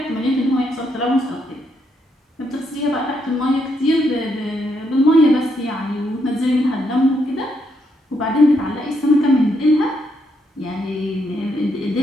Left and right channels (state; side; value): normal; both; correlation 0.77